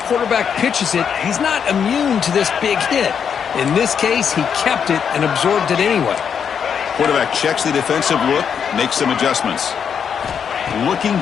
pitches it, he's not immune to this big hit. In this case, he kept it and absorbed it anyway. Quarterback checks the defensive look, makes some adjustments. Looking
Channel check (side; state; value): right; quieter; 7.3 dB